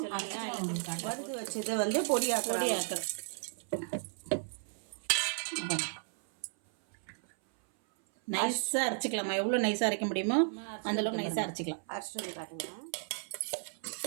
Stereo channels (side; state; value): left; silent; 55 dB below the other